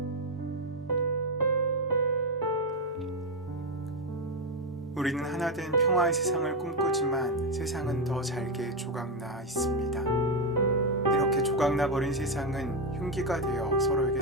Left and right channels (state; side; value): normal; both; correlation 0.06